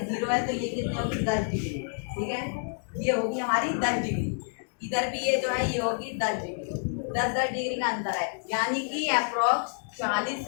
0 है तो ये कितने होगी, 10 डिग्री। ठीक है, ये होगी हमारी 10 डिग्री। इधर भी ये जो है ये होगी 10 डिग्री, 10-10 डिग्री का अंतर है, यानी कि अप्रोक्स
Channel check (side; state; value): right; silent; digital silence